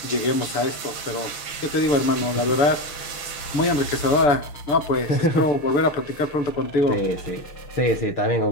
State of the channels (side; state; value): right; late; 6.6 ms